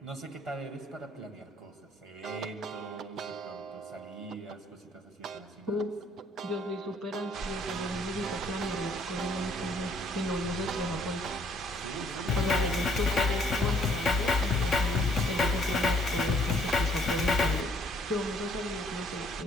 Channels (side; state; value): both; normal; correlation 0.64